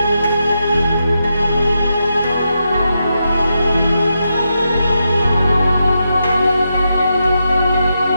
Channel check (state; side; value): inverted; both; correlation -0.85